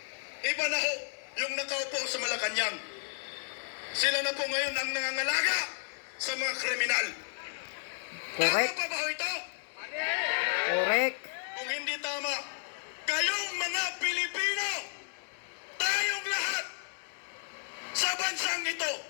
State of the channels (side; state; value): right; silent; 56 dB below the other